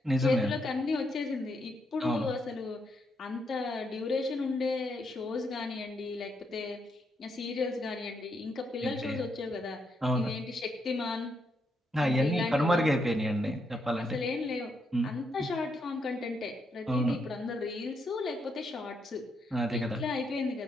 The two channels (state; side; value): normal; both; correlation 0.79